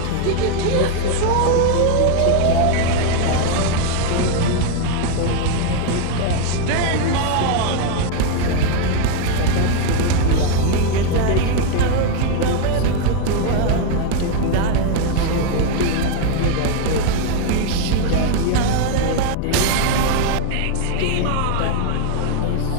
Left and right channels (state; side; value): different; both; correlation 0.01